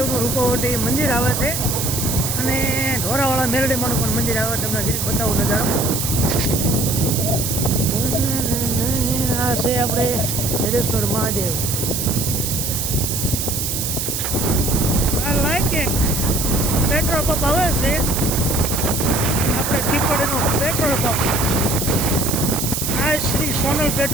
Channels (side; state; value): right; noise; hiss, 2 dB below the sound